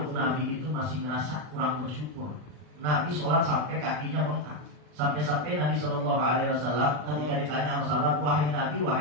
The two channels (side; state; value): left; late; 40 ms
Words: Nabi itu masih merasa kurang bersyukur. Nabi sholat sampai kakinya bengkak. Sampai-sampai Nabi Shallallahu Alaihi Wasallam ketika ditanya sama sahabat, wahai Nabi,